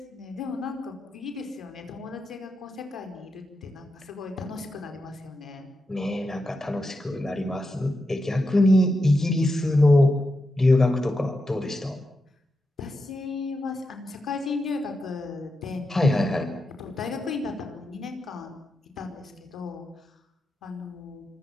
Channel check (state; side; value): normal; both; correlation 0.87